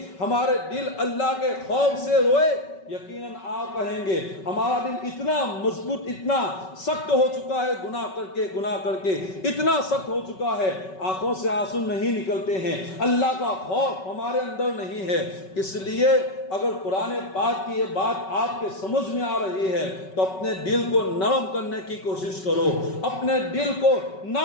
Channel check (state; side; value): late; right; 5.3 ms